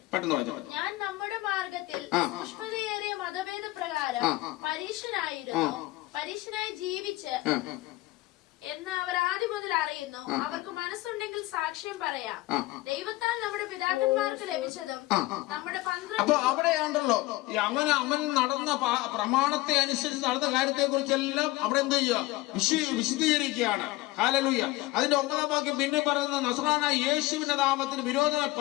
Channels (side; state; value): right; quieter; 19.4 dB